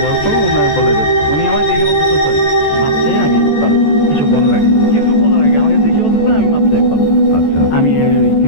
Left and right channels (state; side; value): late; right; 14 ms